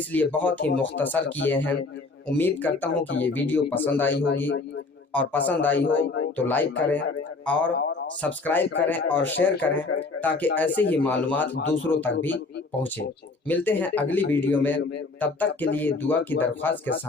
لیے بہت ہی مختصر کیے ہیں۔ امید کرتا ہوں کہ یہ ویڈیو پسند آئی ہوگی، اور پسند آئی ہو تو لائک کریں اور سبسکرائب کریں اور شیئر کریں تاکہ ایسے ہی معلومات دوسروں تک بھی پہنچے۔ ملتے ہیں اگلی ویڈیو میں، تب تک کے لیے دعا کی درخواست کے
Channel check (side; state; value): right; quieter; 3.7 dB